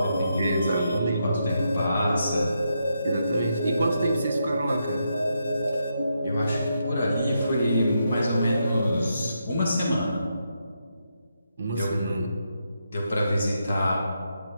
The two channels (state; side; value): inverted; both; correlation -0.82